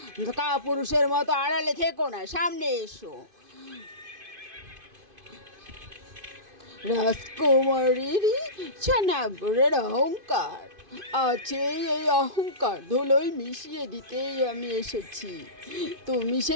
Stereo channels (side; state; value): left; late; 2.5 ms